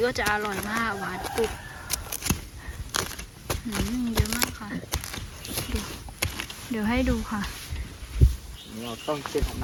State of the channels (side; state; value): both; identical; correlation 1.00